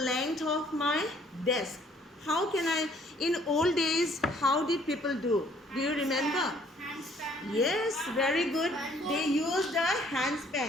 of my desk. How can I, in old days, how did people do? Do you remember? Handspan. Yes, very good. They used a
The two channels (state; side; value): normal; both; correlation 0.61